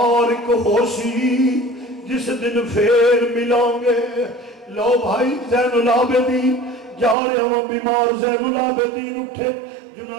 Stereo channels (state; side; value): drops out; left; at 7.2 s